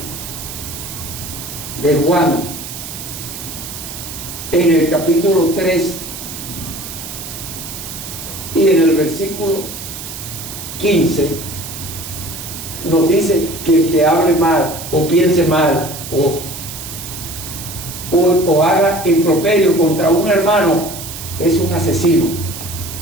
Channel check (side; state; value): right; noise; hiss, 10 dB below the sound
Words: Juan, en el capítulo 3 y en el versículo 15, nos dice que el que hable mal o piense mal o haga improperio contra un hermano es un asesino.